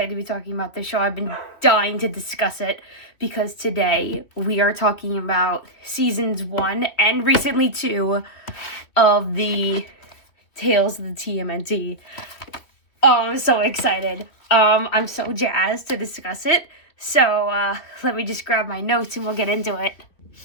to be talking about this show. I've been dying to discuss it because today we are talking about seasons 1 and recently 2 of the Tales of the Tmnt. I'm so excited. I'm so jazzed to discuss it. So let me just grab my notes and we'll get into it.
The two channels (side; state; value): right; late; 3.0 ms